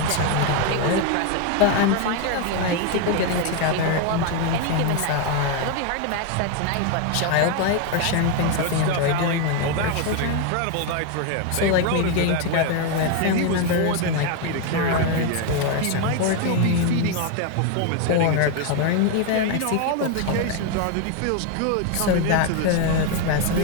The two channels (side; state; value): both; different; correlation 0.01